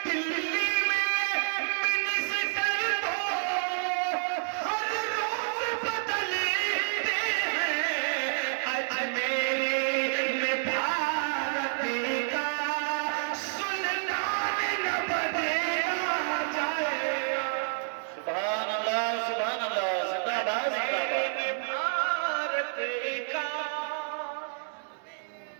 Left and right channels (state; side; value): silent; left; 58 dB below the other